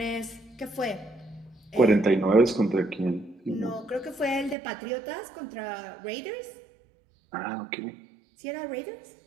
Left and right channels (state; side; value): drops out; left; at 4.5 s